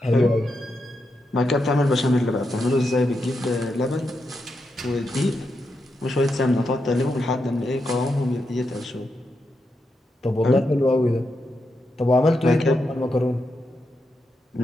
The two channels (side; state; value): both; normal; correlation 0.85